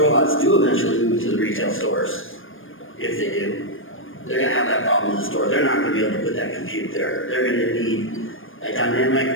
do eventually move to the retail stores, if they do, they're going to have that problem in the store. They're not going to be able to put that compute there. They're going to need a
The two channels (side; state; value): right; late; 0.59 ms